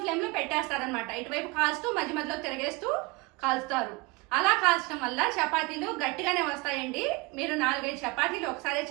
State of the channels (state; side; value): quieter; left; 25.4 dB